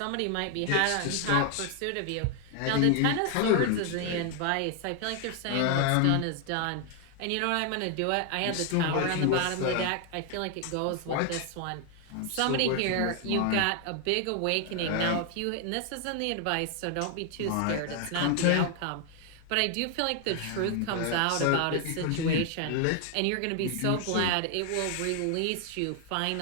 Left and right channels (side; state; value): both; different; correlation 0.00